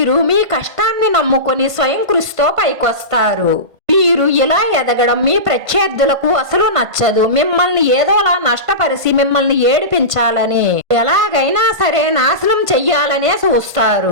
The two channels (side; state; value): left; late; 1.5 ms